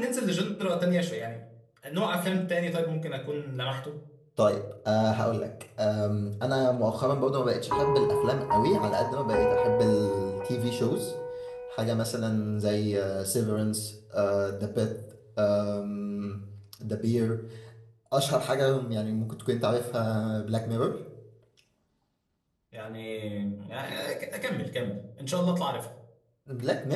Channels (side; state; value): both; identical; correlation 1.00